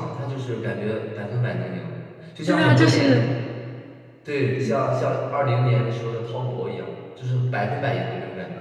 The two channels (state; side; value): identical; both; correlation 1.00